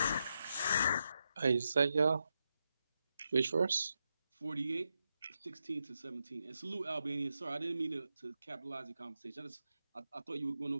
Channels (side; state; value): both; inverted; correlation -0.86